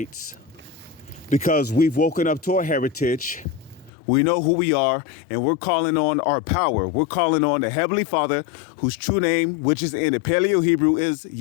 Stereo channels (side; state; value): right; drops out; at 3.9 s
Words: because we've woken up to our heritage. We know who we are, and we're calling on our power. We're calling on the Heavenly Father, whose true name, which is in the Paleo Hebrew, is